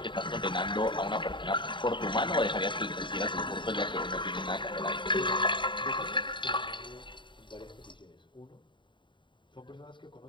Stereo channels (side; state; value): right; late; 0.23 ms